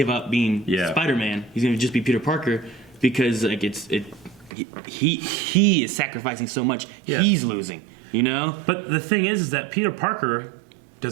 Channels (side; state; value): left; drops out; at 4.5 s